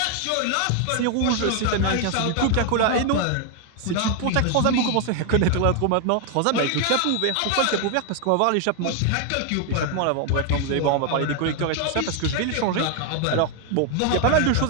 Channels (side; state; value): both; different; correlation 0.00